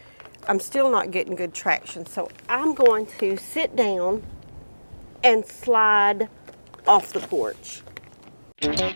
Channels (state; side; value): inverted; both; correlation -1.00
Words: I'm still not getting good traction. So I'm going to sit down and slide off the porch. Smell